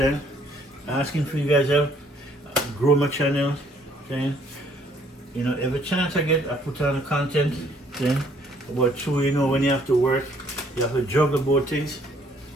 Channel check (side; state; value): both; normal; correlation 0.63